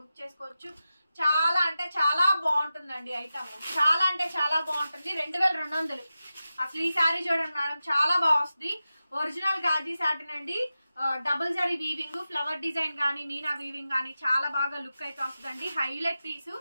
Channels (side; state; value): both; inverted; correlation -0.93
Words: చేసుకోవచ్చు. చాలా అంటే చాలా బాగుంటుందండి ఐటమ్. చాలా అంటే చాలా బాగుంటుంది. 2200. అసలు ఈ శారీ చూడండి మేడం, చాలా బాగా వస్తుంది. ఒరిజినల్ గాజీ సాటిన్ అండి. Double zari weaving, flower design కానీ మీనా వీవింగ్ కానీ చాలా బాగా లుక్ అయితే వస్తుందండి. Highlight piece,